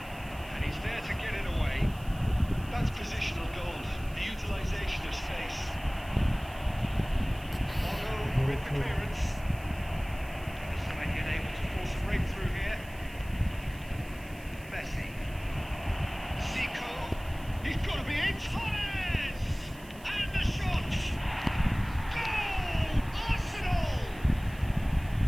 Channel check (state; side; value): noise; right; hiss, 22 dB below the sound